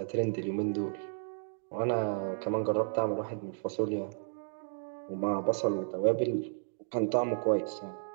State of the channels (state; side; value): silent; left; digital silence